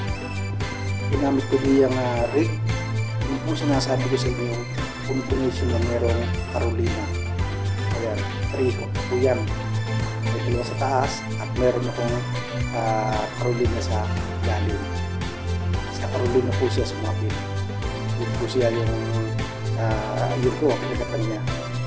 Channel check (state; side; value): identical; both; correlation 1.00